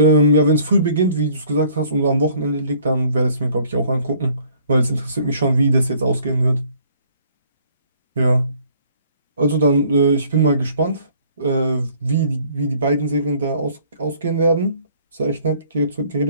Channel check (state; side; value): inverted; both; correlation -0.58